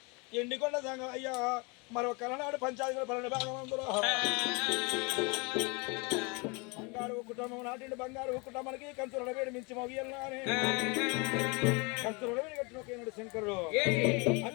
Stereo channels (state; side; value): quieter; right; 29.7 dB